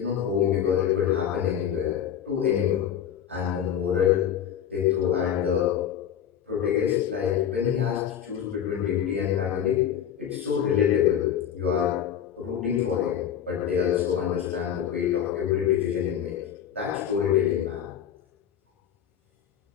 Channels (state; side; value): quieter; right; 9.4 dB